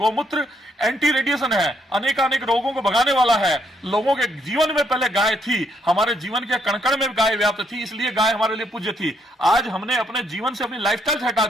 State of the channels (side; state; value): both; normal; correlation 0.72